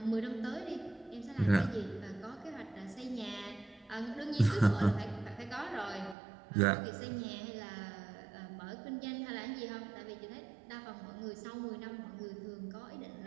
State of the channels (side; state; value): left; drops out; at 6.2 s